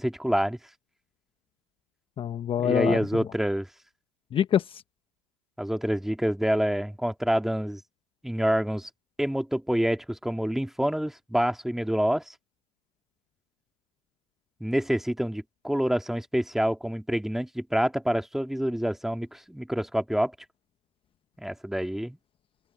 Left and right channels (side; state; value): both; normal; correlation 0.93